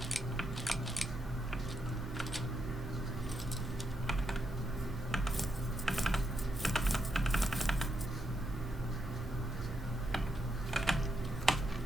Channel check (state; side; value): normal; both; correlation 0.81